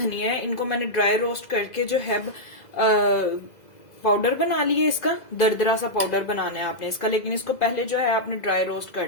है। इनको मैंने ड्राई रोस्ट करके जो है पाउडर बना लिया। इसका दरदरा सा पाउडर बनाना है आपने इसका, लेकिन इसको पहले जो है आपने ड्राई रोस्ट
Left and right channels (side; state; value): right; late; 2.0 ms